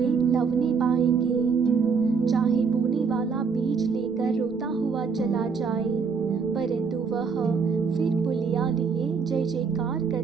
लवने पाएंगे। चाहे बोने वाला बीज लेकर रोता हुआ चला जाए, परंतु वह फिर पुलिया लिए जय जयकार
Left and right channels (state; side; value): quieter; left; 5.5 dB